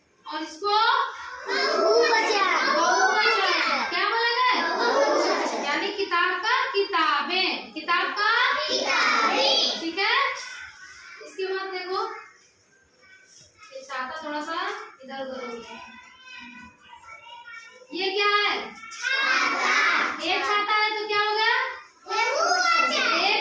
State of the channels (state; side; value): identical; both; correlation 1.00